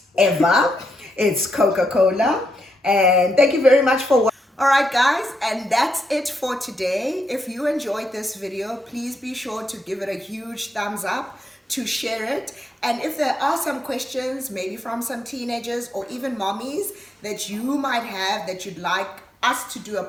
ever. It's Coca-Cola. And thank you very much for watching. All right, guys, and that's it for today. If you enjoyed this video, please be sure to give it a huge thumbs up, to share it. And if there are some questions, maybe from some teenagers or even mommies that you might have that you'd like us to do a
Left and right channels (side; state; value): both; normal; correlation 0.81